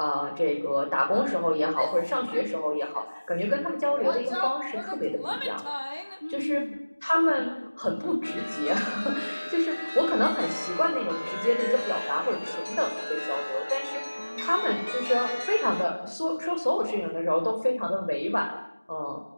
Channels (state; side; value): inverted; both; correlation -1.00